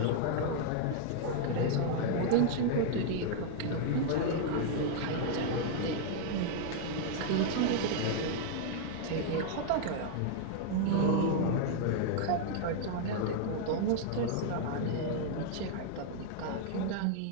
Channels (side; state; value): both; different; correlation 0.00